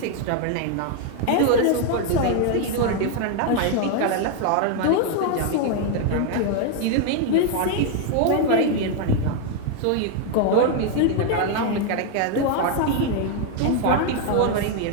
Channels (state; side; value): different; both; correlation 0.00